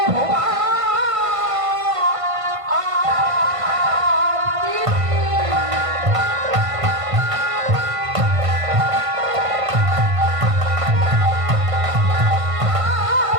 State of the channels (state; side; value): late; left; 1.5 ms